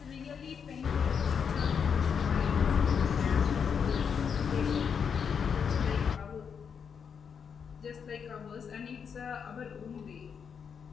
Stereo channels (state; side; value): quieter; right; 6.8 dB